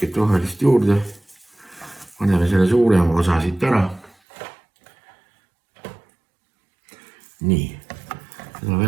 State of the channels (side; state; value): left; drops out; at 4.2 s